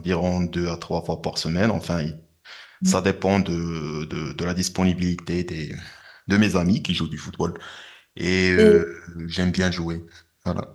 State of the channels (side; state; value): both; identical; correlation 1.00